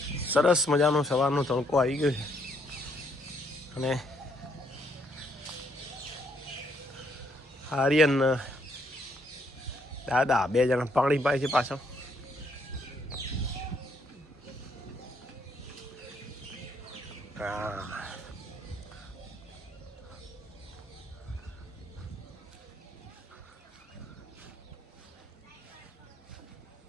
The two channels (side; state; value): both; normal; correlation 0.71